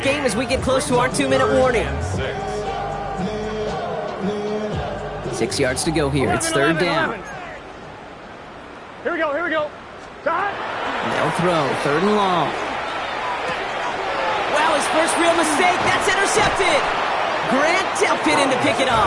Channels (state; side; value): identical; both; correlation 1.00